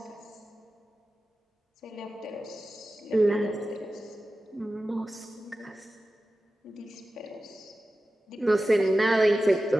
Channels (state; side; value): normal; both; correlation 0.94